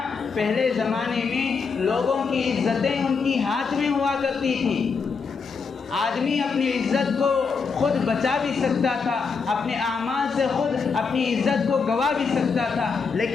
پہلے زمانے میں لوگوں کی عزتیں ان کی ہاتھ میں ہوا کرتی تھیں، آدمی اپنی عزت کو خود بچا بھی سکتا تھا، اپنے اعمال سے خود اپنی عزت کو گوا بھی سکتا تھا،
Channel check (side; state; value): right; quieter; 5.2 dB